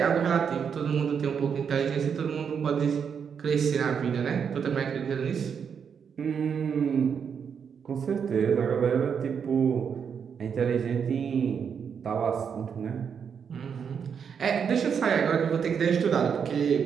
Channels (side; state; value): left; quieter; 7.0 dB